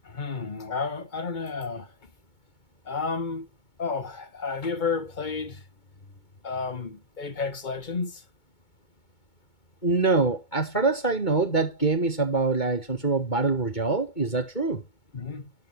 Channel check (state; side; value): late; right; 2.2 ms